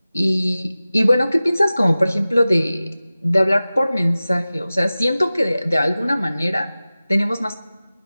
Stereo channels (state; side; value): inverted; both; correlation -0.97